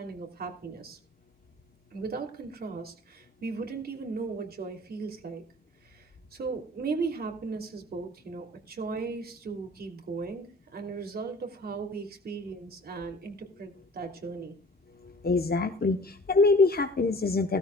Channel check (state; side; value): normal; both; correlation 0.47